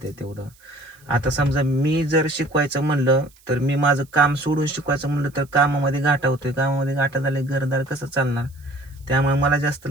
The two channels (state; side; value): noise; right; hiss, 29 dB below the sound